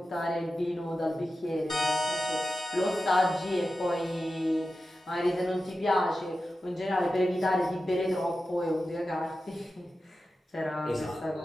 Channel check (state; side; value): normal; both; correlation 0.92